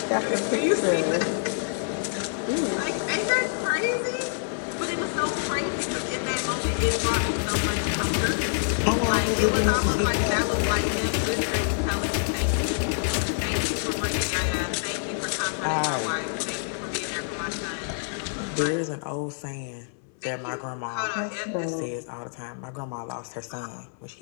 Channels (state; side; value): silent; right; 59 dB below the other